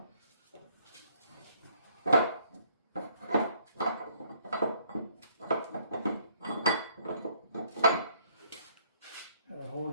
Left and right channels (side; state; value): both; inverted; correlation -0.64